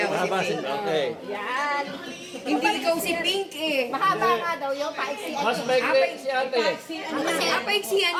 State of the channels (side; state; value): both; identical; correlation 1.00